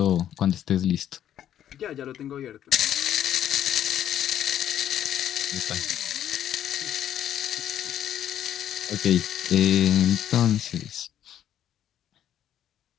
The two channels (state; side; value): quieter; right; 10.7 dB